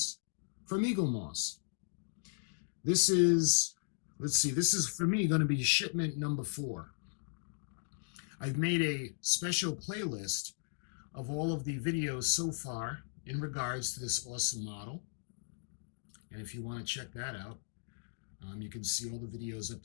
from Eagle Moss. This is for me going to be shipment number 4. I've made a special playlist of all of the videos so far in regards to this awesome model. And if you want to check that out, you can see all the videos up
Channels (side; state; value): right; silent; digital silence